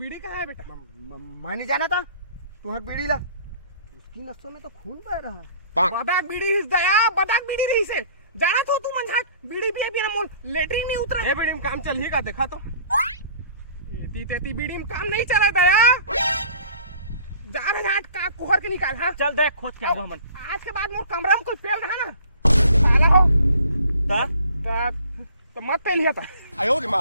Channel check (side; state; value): both; inverted; correlation -0.51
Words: कहाँ है बेटा मैं नहीं जाना था तुम्हारी बीड़ी ला उसकी नसों में तो खून बह रहा है बदाक बीड़ी हिस दया बदाक बीड़ी रही से जाना तो तू मंझाट बीड़ी भी ना मोल लेटरिन नहीं उतरा ए बीड़ी में काम चल ही का देखा तो एती तेती बीड़ी में काम नहीं चला दया जा रहा घाट का कुहर के निकाल हाँ चल देख खोज के आबो मन आज के बाद मोर कमरा में कोई पेल रहा ना साला हो ता तो मत पेल लिया था आयो रे